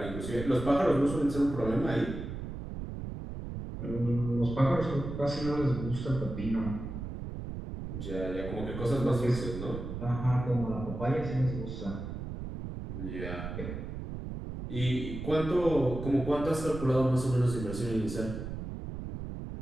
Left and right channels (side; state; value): right; noise; rumble, 7 dB below the sound